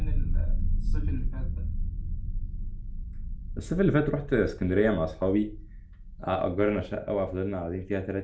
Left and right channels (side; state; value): both; identical; correlation 1.00